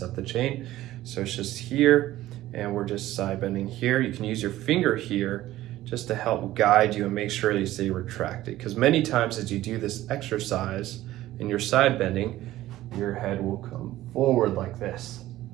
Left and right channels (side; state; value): left; quieter; 15.2 dB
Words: of the chain. So it's just here and we're just side bending here. You can use your finger here just to help guide you and make sure that you stay retracted, because many times as you do this exercise and you're side bending, your head will come forward like this.